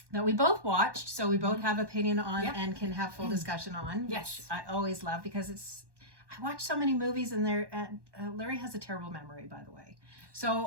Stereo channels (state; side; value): late; left; 1.2 ms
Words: that we both watched, so we both have opinion on and can have full discussion on. Yes. Which I always love because I watch so many movies and Larry has a terrible memory, by the way.